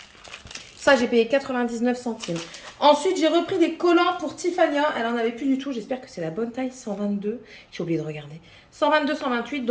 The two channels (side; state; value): both; identical; correlation 1.00